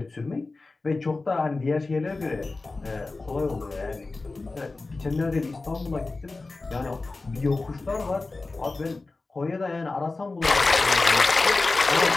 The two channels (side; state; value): right; quieter; 3.5 dB